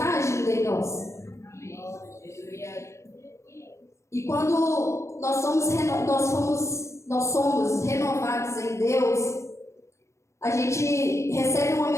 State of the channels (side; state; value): right; late; 0.14 ms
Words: agindo em nós. E quando nós somos renovados em Deus, a gente recebe uma